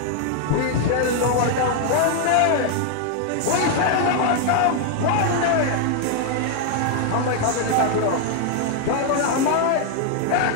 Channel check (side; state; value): both; different; correlation 0.00